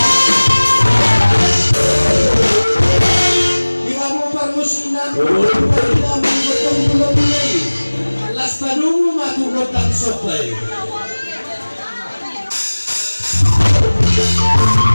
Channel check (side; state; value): both; inverted; correlation -1.00